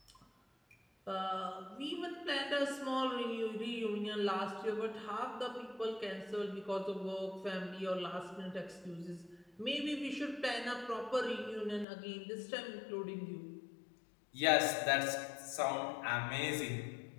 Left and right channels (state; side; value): drops out; right; at 11.9 s